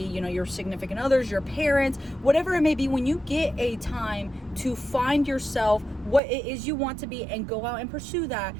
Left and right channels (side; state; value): left; drops out; at 6.2 s